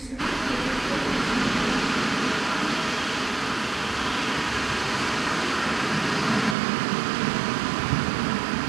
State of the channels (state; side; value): drops out; left; at 6.6 s